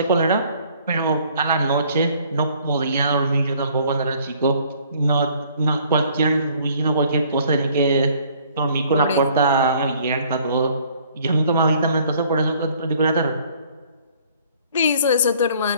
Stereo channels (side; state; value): both; inverted; correlation -0.58